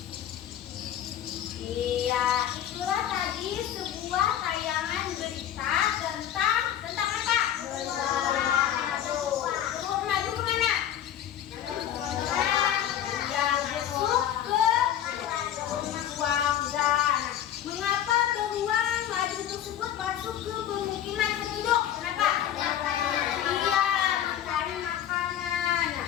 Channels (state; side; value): quieter; right; 10.8 dB